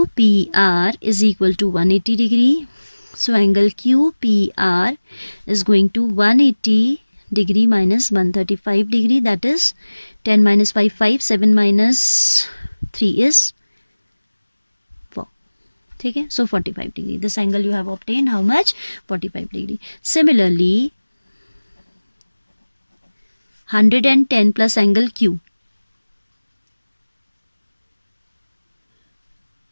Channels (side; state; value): both; inverted; correlation -1.00